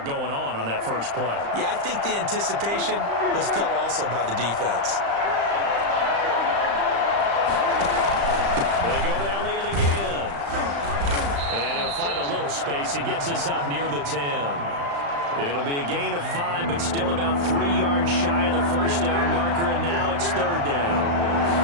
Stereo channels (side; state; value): left; late; 35 ms